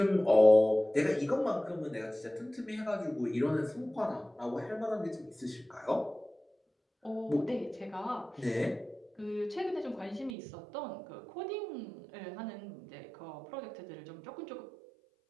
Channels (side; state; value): left; drops out; at 10.4 s